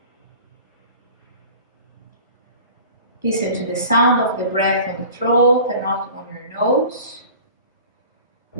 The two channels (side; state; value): both; inverted; correlation -0.42